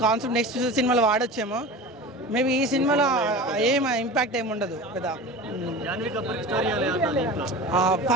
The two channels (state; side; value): normal; both; correlation 0.33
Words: కాన్సెప్ట్ నెక్స్ట్ సినిమాలో వాడొచ్చేమో మేబీ ఈ సినిమాలో ఏం ఇంపాక్ట్ ఏమి ఉండదు పెద్ద